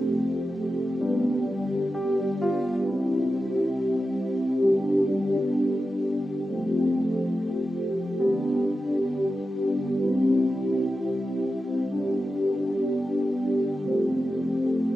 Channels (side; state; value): both; normal; correlation 0.91